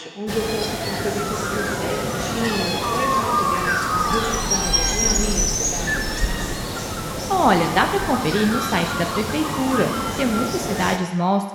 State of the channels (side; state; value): both; identical; correlation 1.00